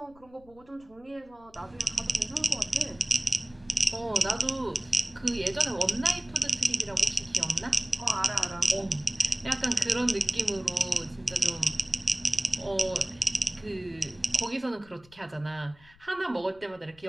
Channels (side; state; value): left; noise; rumble, 27 dB below the sound